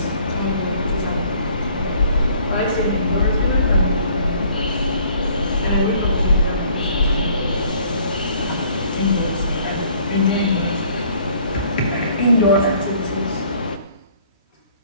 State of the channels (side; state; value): both; inverted; correlation -0.58